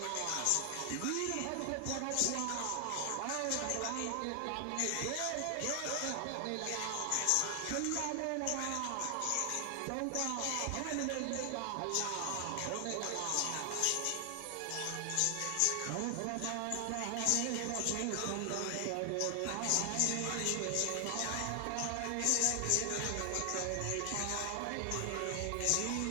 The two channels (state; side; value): different; both; correlation 0.00